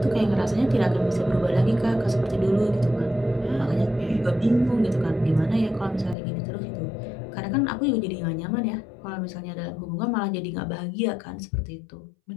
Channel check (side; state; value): right; drops out; at 6.2 s